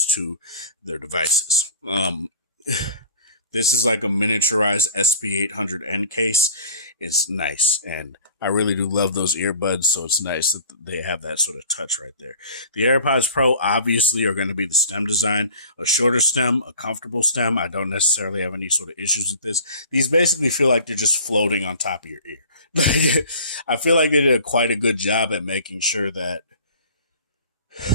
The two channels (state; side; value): inverted; both; correlation -0.44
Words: to their devices. This is like a miniaturized SP800N case. It's nice. And I really do love those earbuds. So it's nice that they have that sort of touch right there. The AirPods Pro obviously are going to be the stem design, a shorter stem, a comfortable stem. I don't necessarily have any sort of issues with this. These basically feel like they're just floating on top of your ear. I feel like they did quite a good job at making sure that